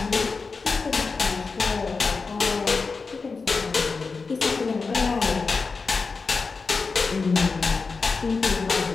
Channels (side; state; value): right; quieter; 4.5 dB